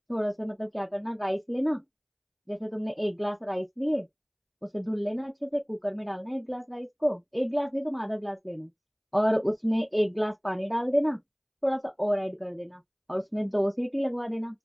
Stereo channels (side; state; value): both; identical; correlation 1.00